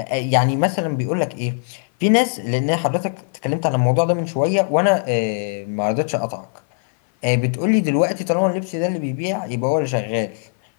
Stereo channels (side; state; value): right; silent; 59 dB below the other